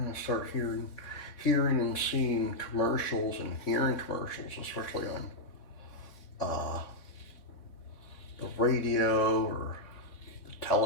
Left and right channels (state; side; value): late; right; 3.7 ms